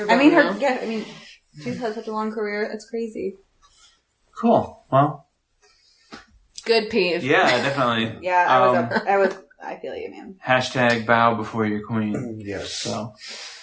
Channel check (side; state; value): both; identical; correlation 1.00